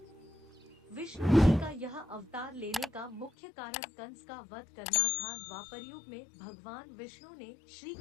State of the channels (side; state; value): right; drops out; at 3.3 s